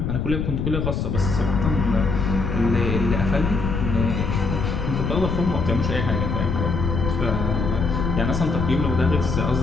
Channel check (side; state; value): left; noise; rumble, 1 dB below the sound